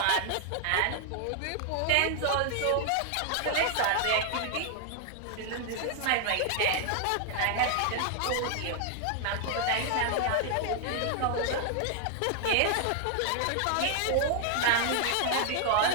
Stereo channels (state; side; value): different; both; correlation 0.00